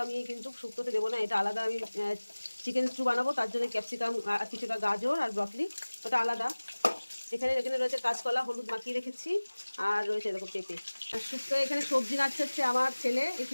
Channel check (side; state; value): both; inverted; correlation -1.00